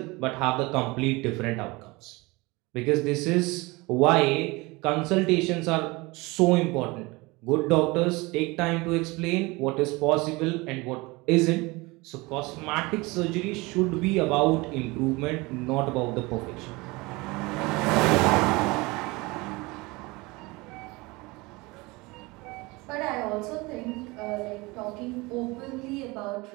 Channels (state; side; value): quieter; left; 23.8 dB